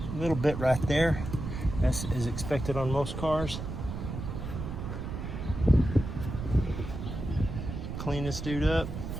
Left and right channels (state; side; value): noise; right; rumble, 6 dB below the sound